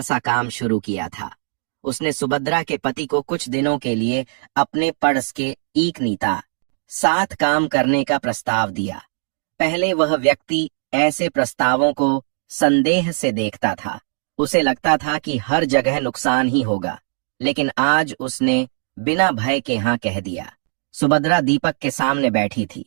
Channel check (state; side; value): silent; left; 60 dB below the other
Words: काम शुरू किया था। उसने सुभद्रा के पति को कुछ दिनों के लिए अपने पड़स के एक नीता साथ काम करने का प्रस्ताव दिया। पहले वह व्यक्ति ऐसे प्रस्तावों को संदेह से देखता था। उसे लगता था कि हर जगह नुकसान ही होगा, लेकिन आज उसने बिना भय के हाँ कह दिया। सुभद्रा दीपक के सामने बैठी थी।